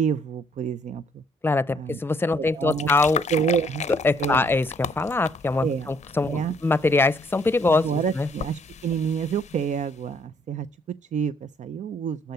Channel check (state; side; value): normal; both; correlation 0.65